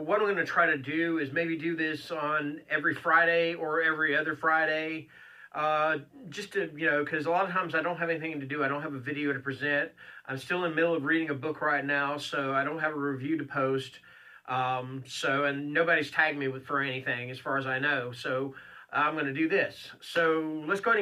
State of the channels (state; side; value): identical; both; correlation 1.00